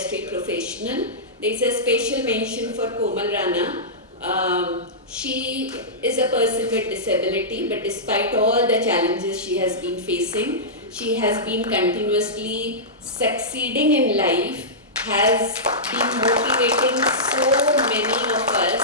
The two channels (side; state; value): both; normal; correlation -0.15